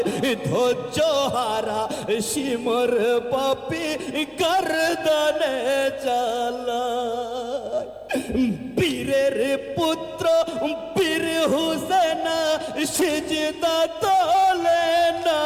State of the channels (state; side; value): identical; both; correlation 1.00